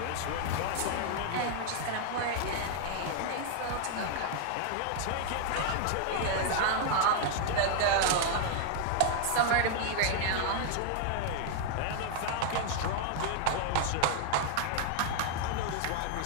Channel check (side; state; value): both; different; correlation 0.00